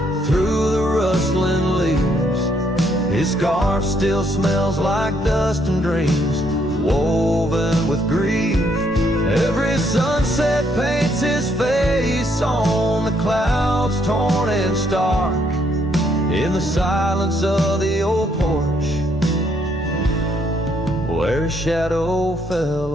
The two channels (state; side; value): normal; both; correlation 0.71